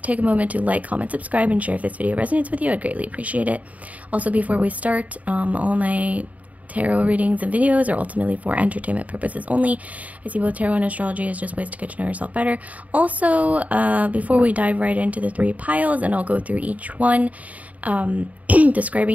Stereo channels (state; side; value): late; left; 0.071 ms